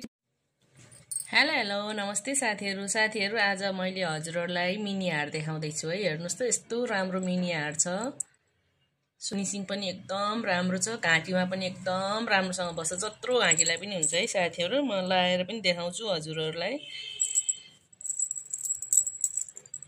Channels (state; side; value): identical; both; correlation 1.00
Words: हेलो नमस्ते साथीहरु आज मैले हजुरहरुलाई मिनी हार देखाउँदै छु है। हेर्नुस् त यस्तो राम्रो मिनी हार छ। फिनिशिङ पनि एकदम राम्रो छ। घाँटीमा पनि एकदम राम्रोसँग बस्छ। जत्रो घाँटीलाई पनि हुन्छ है साथीहरु। म लाएर पनि देखाउँछु हजुरहरुलाई।